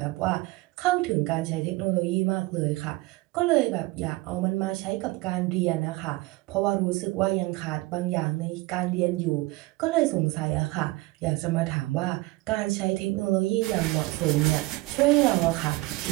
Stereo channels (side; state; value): left; quieter; 21.2 dB